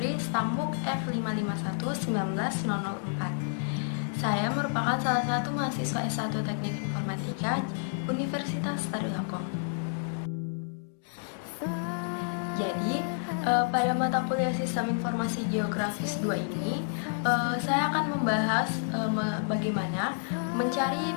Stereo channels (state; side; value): silent; right; digital silence